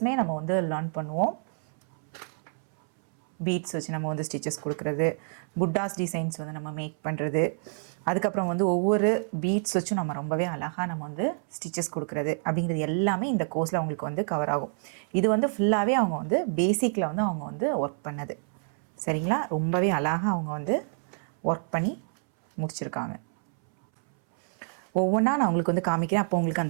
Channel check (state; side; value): silent; left; 59 dB below the other